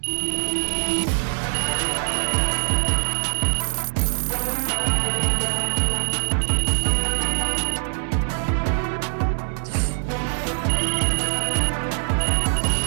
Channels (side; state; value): left; silent; digital silence